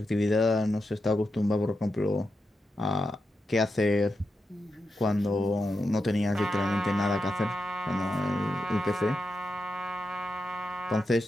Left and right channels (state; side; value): normal; both; correlation 0.87